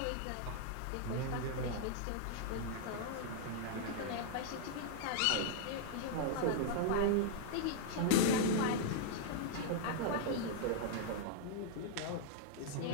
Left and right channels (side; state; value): both; different; correlation -0.01